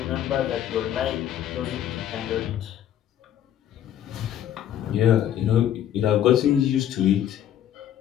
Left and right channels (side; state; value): right; quieter; 10.7 dB